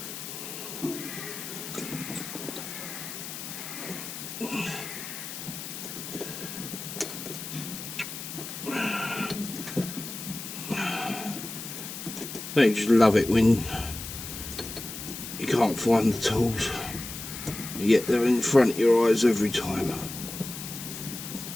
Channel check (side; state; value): left; noise; hiss, 9 dB below the sound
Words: Don't you just love it when you can't find the tools, yet they're in front of your eyes every time.